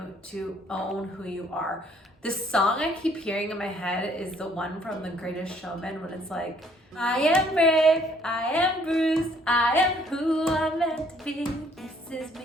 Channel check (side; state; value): both; normal; correlation 0.63